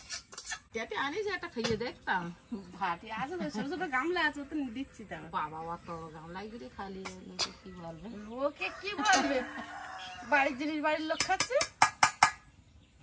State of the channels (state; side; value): identical; both; correlation 1.00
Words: যাতে আনিস একটা খাইয়ে দেখতাম। ভাতি আছে তো, ছোট ছোট গামলা আছে, তো দিচ্ছি। তার বাবা অত গামলাই করে খালি লোকে কি বলবে? লোকে কি বলবে? বাড়ির জিনিস বাড়ির লোক খাচ্ছে।